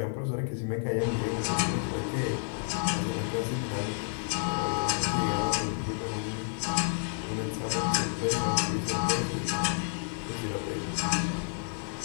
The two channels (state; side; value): silent; right; digital silence